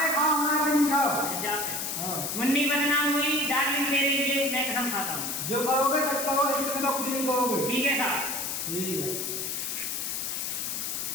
खाओ, हमारे पे नहीं खाओ। जाते हाँ, मुन्नी बदनाम हुई डार्लिंग तेरे लिए, मैं कसम खाता हूँ। जो कहोगे सच कहोगे, इसके सिवा कुछ नहीं कहोगे। ठीक है साहब। ठीक है।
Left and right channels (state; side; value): noise; left; hiss, 3 dB below the sound